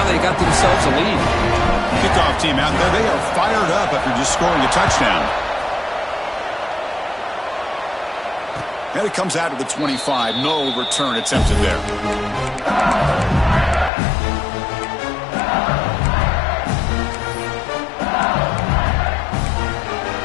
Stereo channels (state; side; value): drops out; right; at 13.9 s